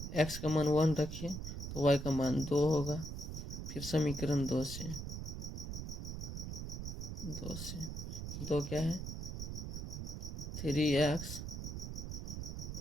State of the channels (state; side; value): noise; right; rumble, 5 dB below the sound